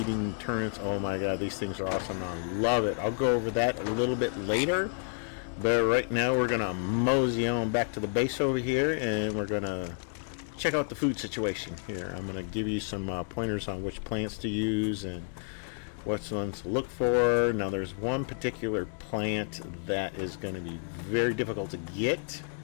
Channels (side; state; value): right; silent; 58 dB below the other